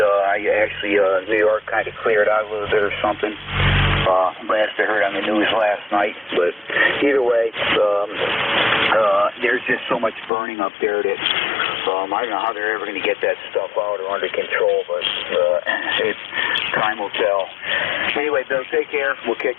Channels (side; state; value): right; drops out; at 10.3 s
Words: New York kind of cleared out a little bit or something. Last I heard on the news last night. But either way, there's just so much burning up there that I don't know how they're ever going to get that stuff out or under control, but time will tell. Anyway, Bill, take care. We'll